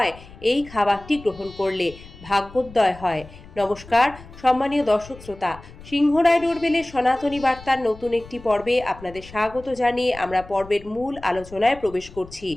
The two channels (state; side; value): noise; left; rumble, 18 dB below the sound